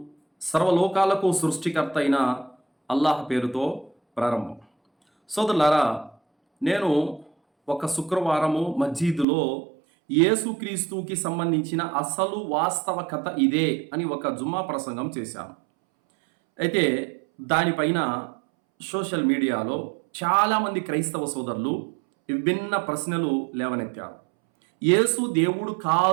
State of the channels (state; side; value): drops out; left; at 9.2 s